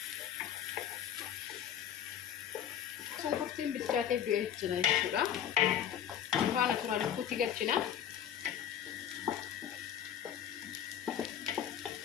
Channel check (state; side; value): quieter; right; 9.8 dB